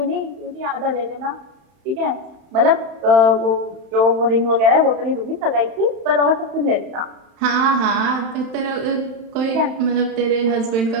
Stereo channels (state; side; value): late; left; 31 ms